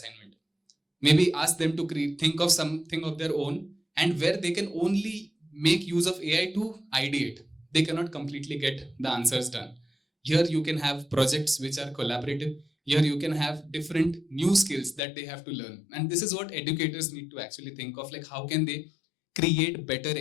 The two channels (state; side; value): drops out; right; at 15.0 s